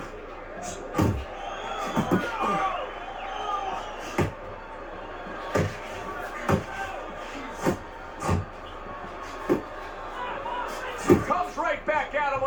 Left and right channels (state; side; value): identical; both; correlation 1.00